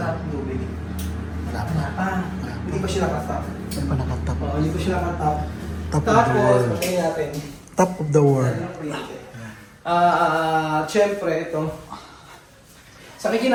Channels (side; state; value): both; identical; correlation 1.00